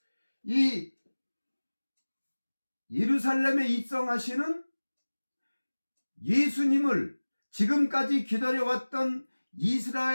이 예루살렘에 입성하시는 예수님을 지금까지 기다려왔던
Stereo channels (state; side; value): inverted; both; correlation -1.00